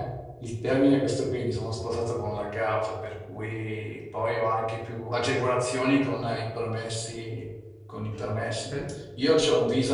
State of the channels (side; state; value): both; identical; correlation 1.00